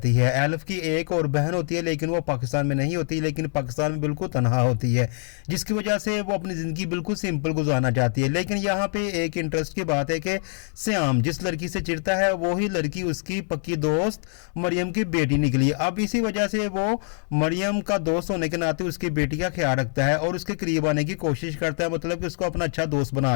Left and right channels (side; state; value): right; silent; 59 dB below the other